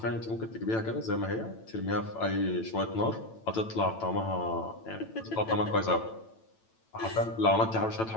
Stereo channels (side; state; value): right; late; 9.0 ms